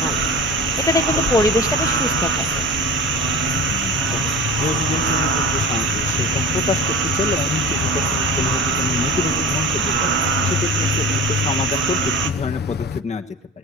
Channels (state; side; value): normal; both; correlation 0.33